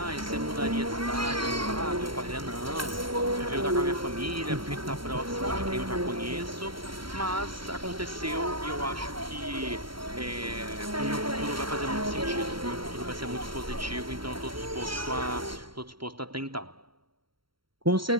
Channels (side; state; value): left; late; 0.73 ms